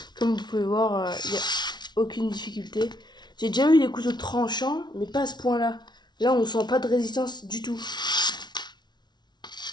comme vous pouvez voir, il n'y a aucune difficulté. J'ai déjà eu des couteaux tranchants, mais pas à ce point-là. Là, on sent pas de résistance du tout.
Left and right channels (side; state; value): right; late; 0.20 ms